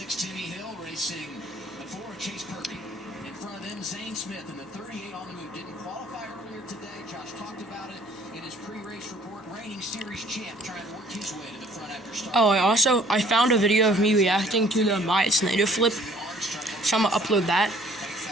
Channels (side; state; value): both; normal; correlation 0.57